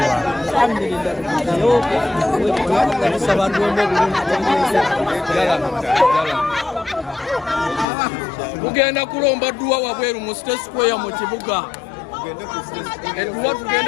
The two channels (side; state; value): right; drops out; at 7.9 s